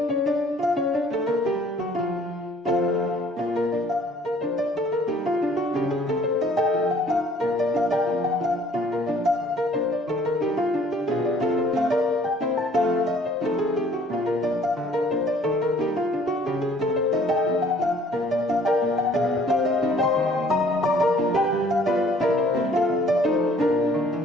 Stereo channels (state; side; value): normal; both; correlation 0.57